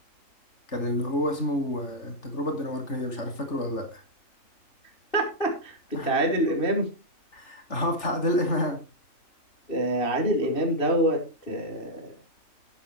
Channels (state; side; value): late; right; 3.4 ms